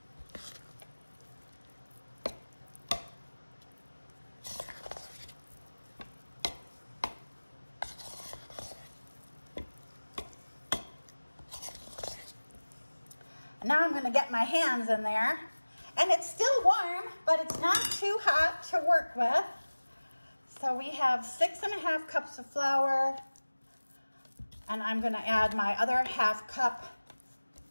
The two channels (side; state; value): both; inverted; correlation -1.00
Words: Now I'm going to get my hands in there, and it's still warm, but it's not too hot to work with. So we have 6.5 cups of flour, and I'm going to add my other half cup